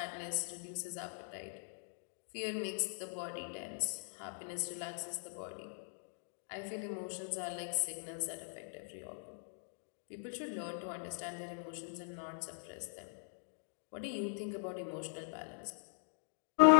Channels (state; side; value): silent; right; digital silence